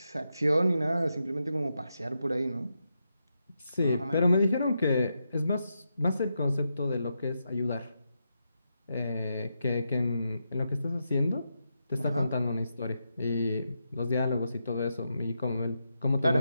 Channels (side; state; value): both; inverted; correlation -0.85